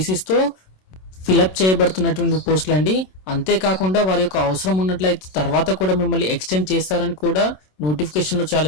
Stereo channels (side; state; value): right; late; 27 ms